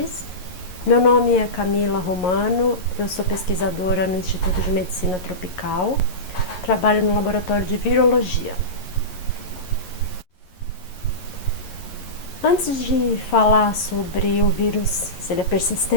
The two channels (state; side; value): late; right; 11 ms